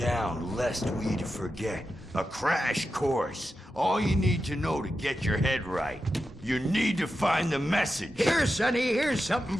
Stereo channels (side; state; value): both; normal; correlation 0.90